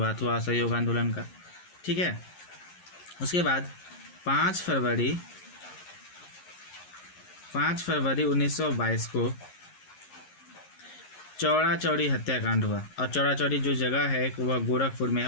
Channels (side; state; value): right; late; 11 ms